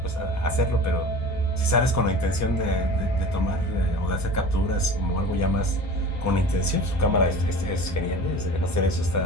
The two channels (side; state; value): both; normal; correlation 0.38